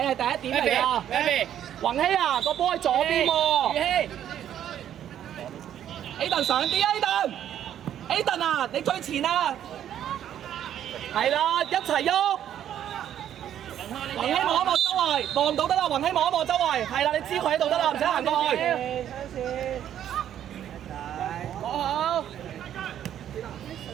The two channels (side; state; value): left; quieter; 10.5 dB